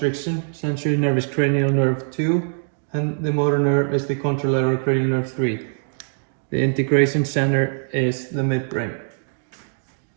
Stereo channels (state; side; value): silent; left; 58 dB below the other